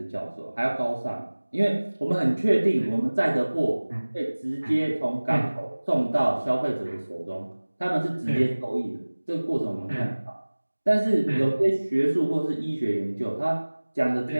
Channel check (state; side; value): inverted; both; correlation -1.00